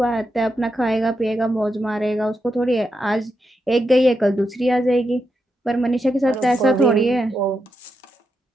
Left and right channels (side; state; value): both; normal; correlation 0.85